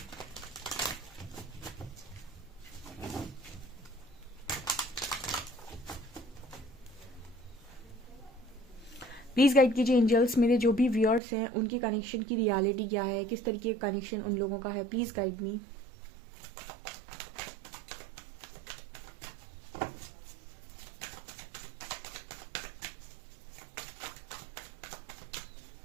प्लीज़ गाइड कीजिए एंजल्स, मेरे जो भी व्यूअर्स हैं उनके कनेक्शन की रियलिटी क्या है, किस तरीके का कनेक्शन उन लोगों का है। Please guide me.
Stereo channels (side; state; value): left; drops out; at 11.2 s